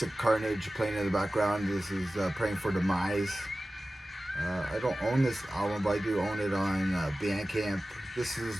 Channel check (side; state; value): both; normal; correlation 0.96